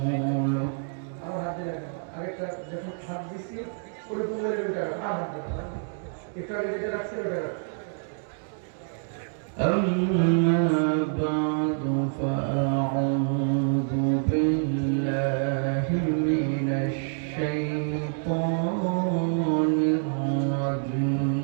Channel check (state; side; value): silent; left; digital silence